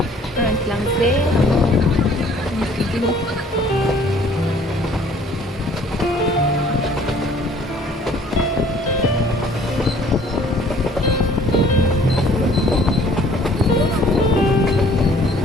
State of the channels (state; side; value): normal; both; correlation 0.56